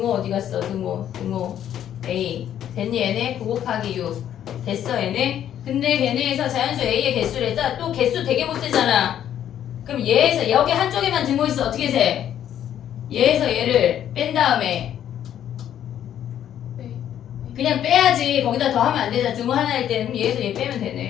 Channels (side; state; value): right; quieter; 10.5 dB